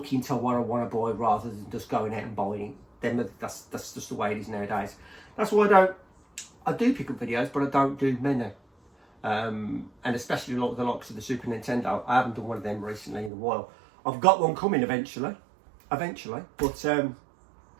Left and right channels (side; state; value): left; drops out; at 13.3 s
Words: into what I want to buy rather than just going out and buying it. That's just the way it is nowadays. That's why I do pick up videos, but I don't do many. And especially the likes of the Super Nintendo. I haven't done one of them recently in a while. I've got one coming eventually. But